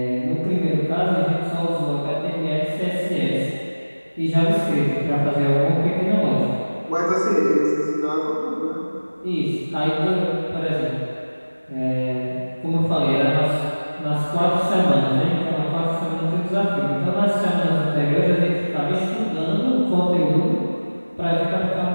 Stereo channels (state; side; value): inverted; both; correlation -1.00